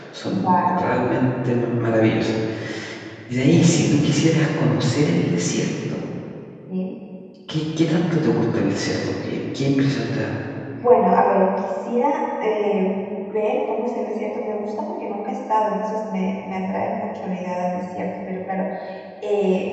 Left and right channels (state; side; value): identical; both; correlation 1.00